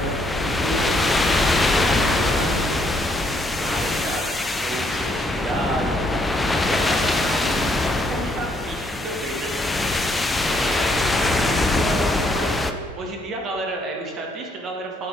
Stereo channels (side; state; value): both; normal; correlation 0.71